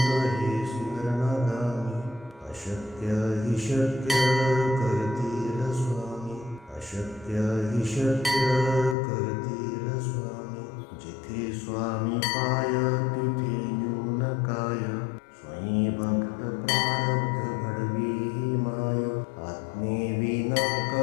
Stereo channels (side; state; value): right; drops out; at 9.0 s